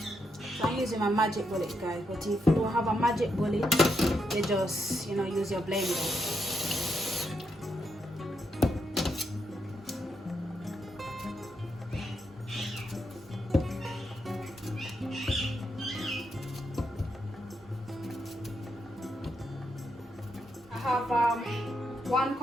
I'm using my magic bullet, guys, but if you don't have a magic bullet, you just, use your blender. I have 1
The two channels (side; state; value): both; normal; correlation 0.81